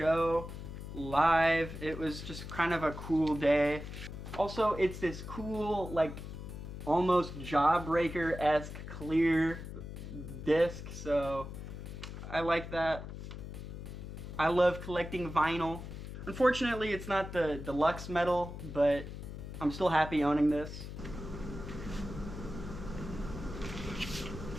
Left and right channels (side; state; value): left; noise; hum, 9 dB below the sound